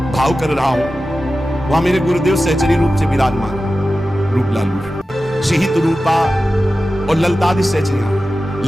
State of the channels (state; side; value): normal; both; correlation 0.94